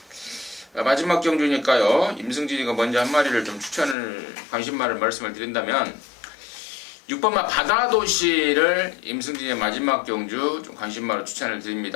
마지막 경주니까요. 임승진이가 먼저 한 마리를 좀 관심마를 말씀을 드린다면 6번마 바다도시를 임승진의 마지막 경주 좀 관심마로 추천을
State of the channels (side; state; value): right; drops out; at 4.0 s